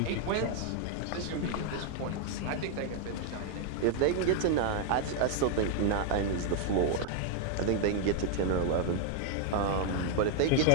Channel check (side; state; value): both; different; correlation 0.00